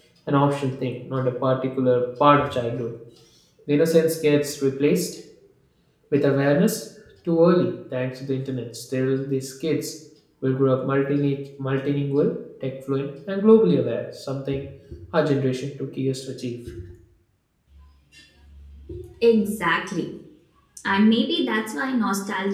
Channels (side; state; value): both; identical; correlation 1.00